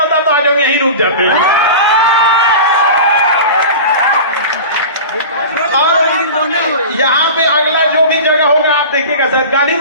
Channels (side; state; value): both; inverted; correlation -0.32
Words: तो आज हम यहीं रुक जाते हैं। और यहाँ पे अगला जो भी जगह होगा आप देखिएगा सर, गांधी